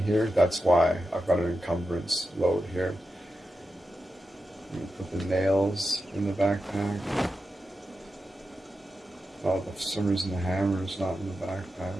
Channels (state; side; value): normal; both; correlation 0.90